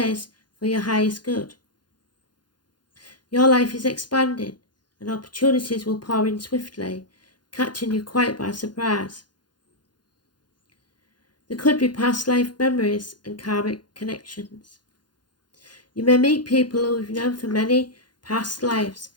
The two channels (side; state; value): right; late; 0.71 ms